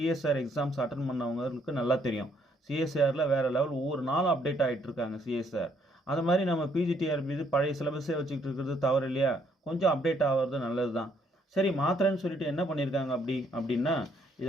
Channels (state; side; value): normal; both; correlation 0.69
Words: எக்ஸாம்ஸ் அட்டன் பண்ணவங்களுக்கு நல்லா தெரியும். சிஎஸ்ஆரில் வேறு லெவல் ஒவ்வொரு நாளும் அப்டேட் ஆகிட்டு இருக்காங்க சிஎஸ்ஆர். அந்த மாதிரி நம்ம பிஜிடிஆர்பி இது பழைய சிலபஸே வச்சுக்கிட்டு இருக்கிறது தவறு இல்லையா? கொஞ்சம் அப்டேட் ஆகிறது நல்லது தான். சரி, மாத்திரன்னு சொல்லிட்டு என்ன பண்ணியிருக்காங்க அப்படின்னா,